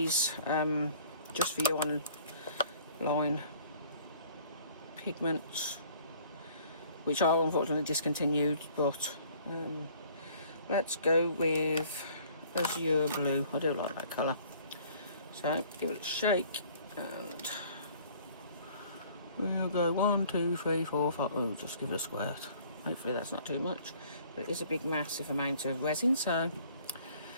just for you on line pigments, which are unfortunately discontinued, but let's go with azure blue. I do like that colour, so give it a shake and we'll go 1, 2, 3, 4, 5. Oh, just give it a squirt. Hopefully that's not too much, but it is a big massive amount of resin, so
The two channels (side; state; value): both; inverted; correlation -0.55